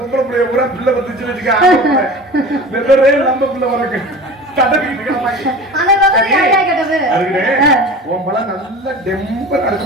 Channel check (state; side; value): normal; both; correlation 0.36